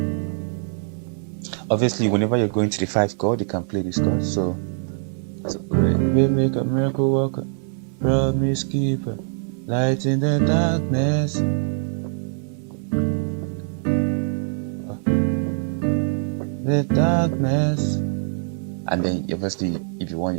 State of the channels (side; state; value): left; silent; digital silence